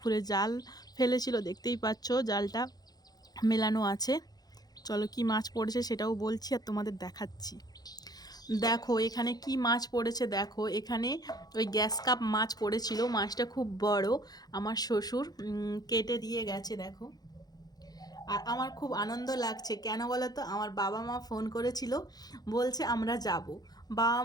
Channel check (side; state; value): right; late; 0.19 ms